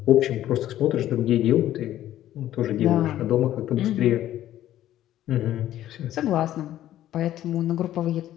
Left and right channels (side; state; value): right; quieter; 12.8 dB